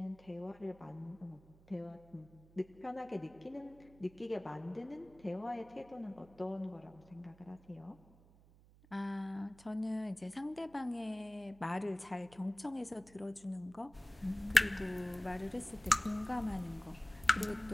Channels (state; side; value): noise; right; hum, 24 dB below the sound